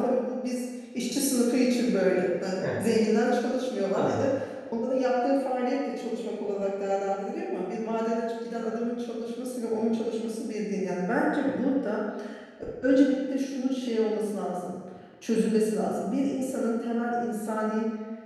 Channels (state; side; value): identical; both; correlation 1.00